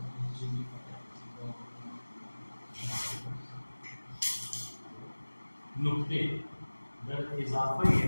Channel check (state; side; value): inverted; both; correlation -1.00